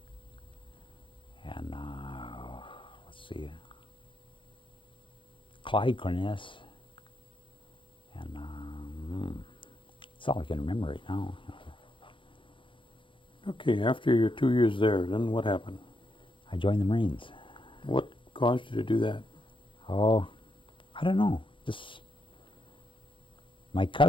and let's see, Clyde Cornelius, and that's all I can remember right now. Okay, after your 2 years there, then what happened? I joined the Marines. What caused you to do that? Oh, I don't know. Just my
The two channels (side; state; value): right; late; 0.25 ms